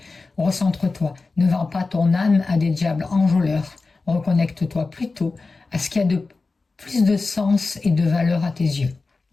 Recentre-toi, ne vends pas ton âme à des diables enjôleurs. Reconnecte-toi plutôt à ce qui a de plus de sens et de valeur à tes yeux.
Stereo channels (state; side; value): quieter; right; 3.8 dB